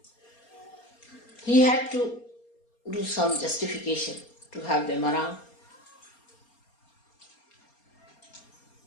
He had to do some justification to have them around.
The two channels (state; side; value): late; right; 4.3 ms